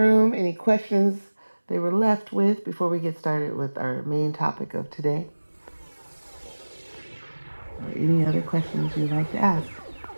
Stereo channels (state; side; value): inverted; both; correlation -1.00